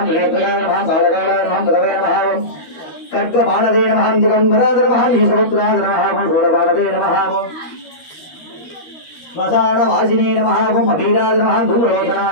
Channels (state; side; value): late; right; 13 ms